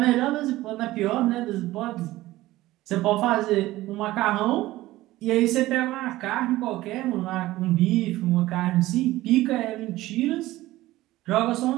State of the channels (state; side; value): quieter; left; 17.0 dB